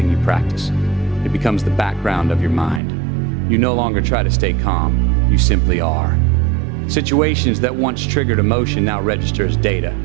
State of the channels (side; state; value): left; drops out; at 2.8 s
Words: you practice. It becomes the background of your mind. You no longer try to stay calm, you simply are. Situations that once triggered emotion now register as data.